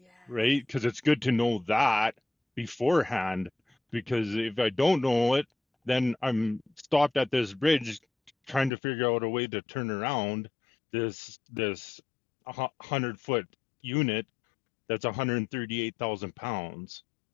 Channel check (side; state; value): right; drops out; at 8.7 s